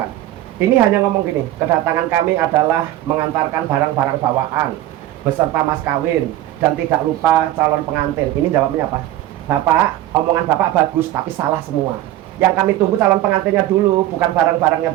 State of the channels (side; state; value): left; quieter; 14.2 dB